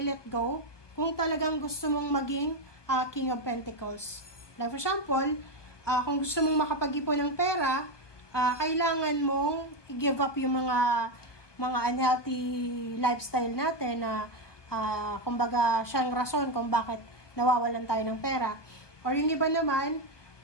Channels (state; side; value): late; right; 1.2 ms